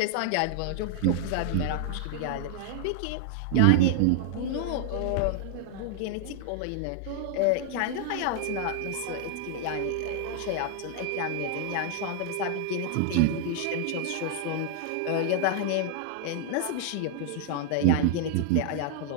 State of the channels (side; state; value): both; different; correlation 0.00